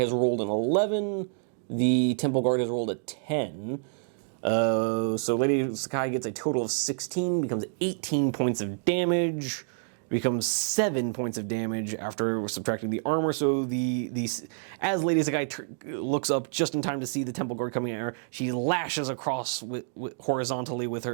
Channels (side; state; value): left; silent; digital silence